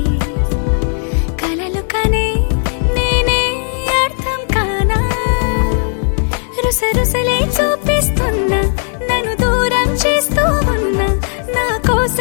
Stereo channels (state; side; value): silent; right; 61 dB below the other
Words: కలలు కనే నేనే అర్థం కానా రుసరుసలే చూపిస్తున్నా నన్ను దూరం చేస్తూ ఉన్నా నా